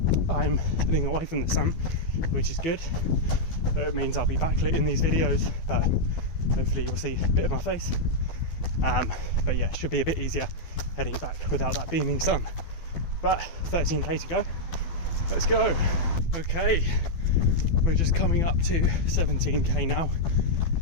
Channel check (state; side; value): late; right; 12 ms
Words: I'm heading away from the sun, which is good, but it means I'll be backlit in these videos, but hopefully you'll see a bit of my face. But yeah, it should be a bit easier heading back without that beaming sun. But 13k to go, let's go. Okay, we're just coming up to 17k now,